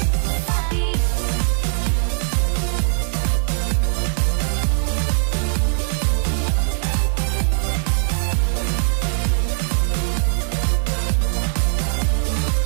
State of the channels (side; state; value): left; silent; 64 dB below the other